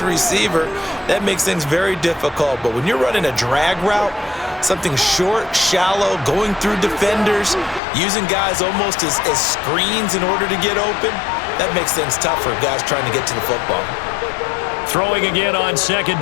That makes things very difficult. But when you're running a drag route, something short, shallow, going through defenders, using guys almost as screens in order to get open, that makes things tough for guys trying to get to the football. Throwing again on second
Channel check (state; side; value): drops out; right; at 7.8 s